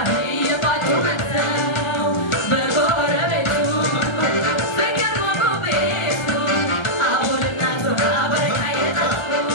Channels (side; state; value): right; late; 1.3 ms